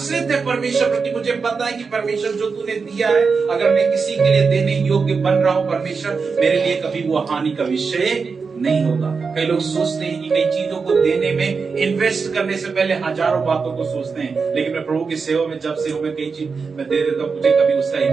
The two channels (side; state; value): left; quieter; 5.0 dB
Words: है परमेश्वर पर कि मुझे पता है कि परमेश्वर जो तूने दिया है, अगर मैं किसी के लिए देने योग्य बन रहा हूं परमेश्वर, मेरे लिए कभी वो हानि का विषय नहीं होगा। कई लोग सोचते हैं कि कई चीजों को देने में इन्वेस्ट करने से पहले हजारों बातों को सोचते हैं, लेकिन मैं प्रभु की सेवा में जब सेवा में कई चीज मैं दे देता हूं, मुझे कभी उसका